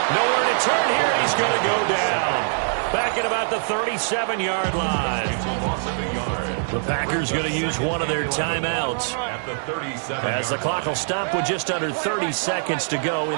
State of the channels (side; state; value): left; silent; digital silence